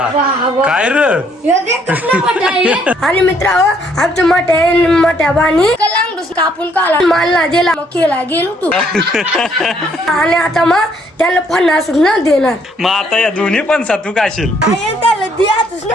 काय रे हे देख कसला मोठा आहे. आणि मित्र आमच्या मोठ्या बाणी कलांगडूस कापून काला मालला दिला मग केला गेलो तू आणि आता मग त्याला फणस न देणार. मग आता या दोन्ही पण सातू काशील त्याला द्याच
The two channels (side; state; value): both; normal; correlation 0.67